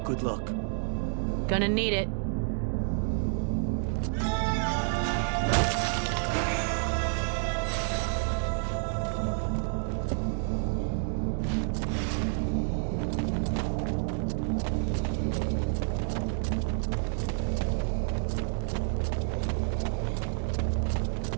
Good luck. Gonna need it.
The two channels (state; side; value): silent; left; 58 dB below the other